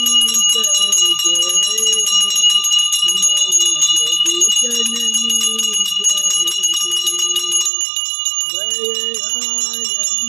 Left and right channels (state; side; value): drops out; left; at 7.7 s